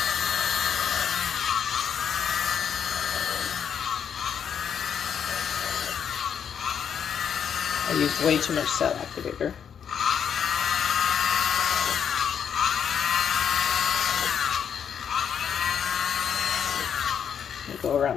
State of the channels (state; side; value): quieter; right; 7.9 dB